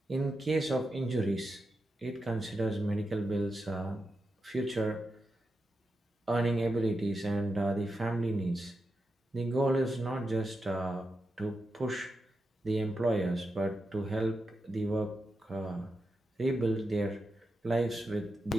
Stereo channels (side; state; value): both; normal; correlation 0.88